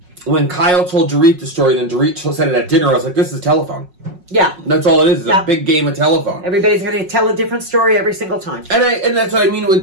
when Kyle told Dorit the story, then Dorit said it at dinner, I was like, this is a telephone. Yeah. That's all it is. It's a big game of telephone. Everybody's going to tell a different story every single time. And that's what I mean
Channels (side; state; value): left; late; 5.5 ms